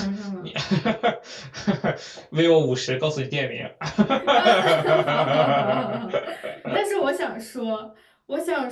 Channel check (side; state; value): both; identical; correlation 1.00